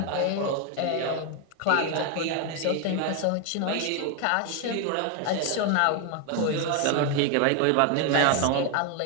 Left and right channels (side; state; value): both; different; correlation 0.01